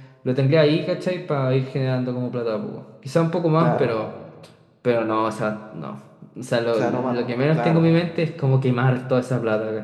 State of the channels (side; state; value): both; identical; correlation 1.00